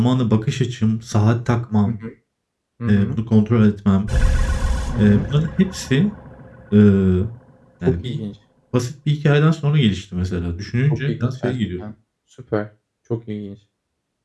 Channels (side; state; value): both; identical; correlation 1.00